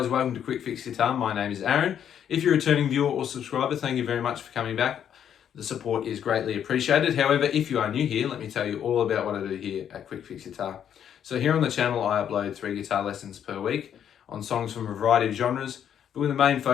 welcome to Quickfix Guitar. My name is Aaron. If you're a returning viewer or subscriber, thank you very much for coming back. The support is greatly appreciated. However, if you are new here, let me tell you all about what I do here at Quickfix Guitar. So here on the channel, I upload 3 guitar lessons per week on songs from a variety of genres, but with a main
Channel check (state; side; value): quieter; right; 9.2 dB